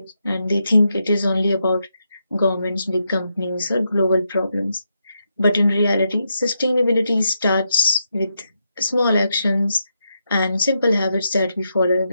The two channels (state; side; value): inverted; both; correlation -0.83